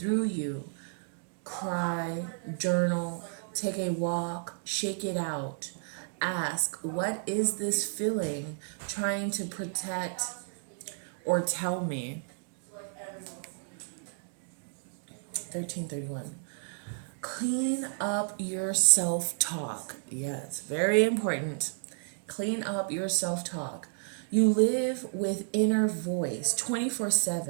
you. Cry, journal, take a walk, shake it out. Ask, what is this feeling trying to protect or tell me? 1331. Clean up your self-talk. Yes, very important. Clean up your self-talk. You live with inner voice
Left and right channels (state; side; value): silent; left; digital silence